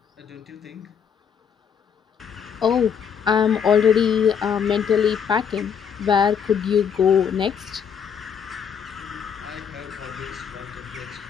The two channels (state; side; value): quieter; right; 7.4 dB